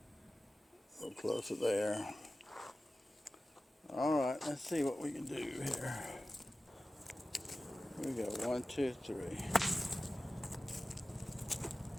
go closer there. All right, let's see what we can do here. Here we go, 1, 2, 3.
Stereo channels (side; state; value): both; normal; correlation 0.95